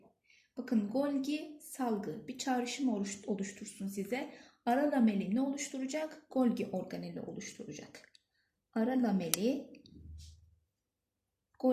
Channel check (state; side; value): identical; both; correlation 1.00